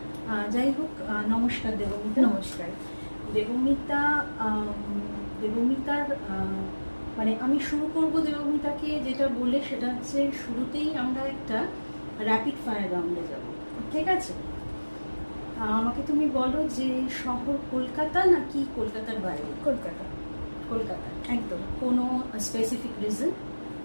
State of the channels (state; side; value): inverted; both; correlation -1.00